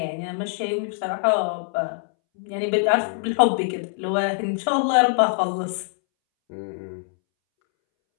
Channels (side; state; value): right; silent; 63 dB below the other